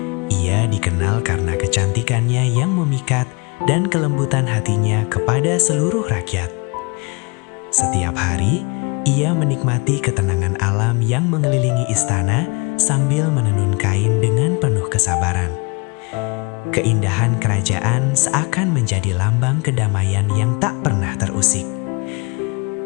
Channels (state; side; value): quieter; right; 29.4 dB